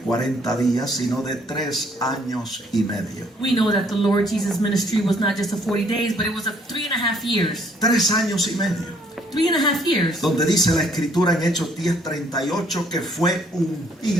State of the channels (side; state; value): both; normal; correlation 0.64